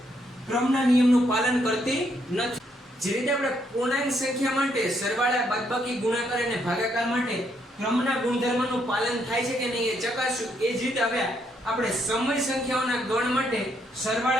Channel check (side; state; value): both; normal; correlation 0.74